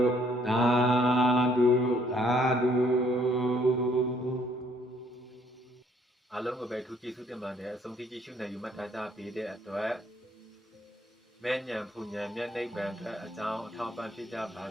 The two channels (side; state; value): both; normal; correlation 0.65